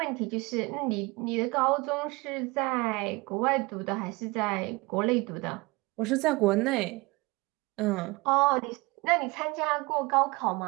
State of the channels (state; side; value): quieter; left; 24.3 dB